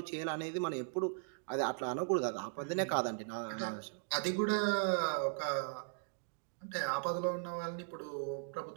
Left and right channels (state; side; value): silent; left; digital silence